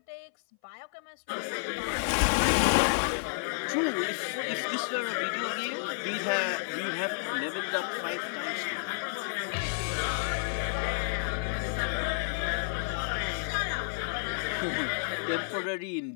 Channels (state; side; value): silent; right; 57 dB below the other